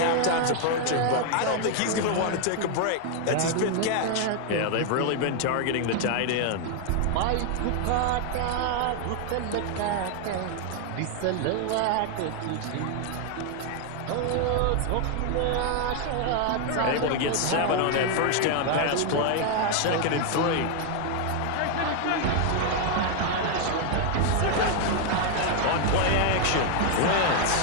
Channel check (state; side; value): different; both; correlation 0.00